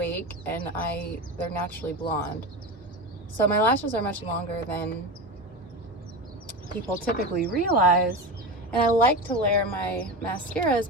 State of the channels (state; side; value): normal; both; correlation 0.23